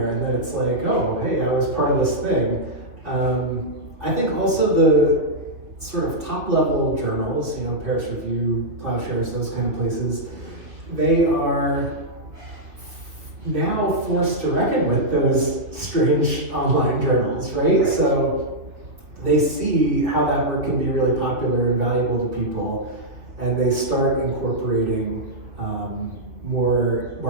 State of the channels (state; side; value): late; left; 2.6 ms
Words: and then it's like, oh, hey, I was part of this thing. I think also the sort of top level journals, Paris Review, Plowshares, those kind of places, they are now forced to reckon with those strange online journals, right? So they see how that work can be really popular and valuable to people, and they start incorporating more